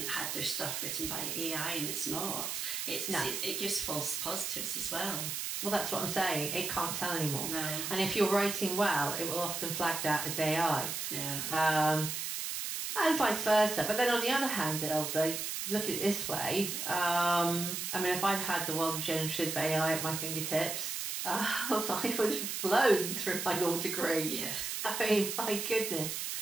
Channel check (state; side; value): noise; right; hiss, 3 dB below the sound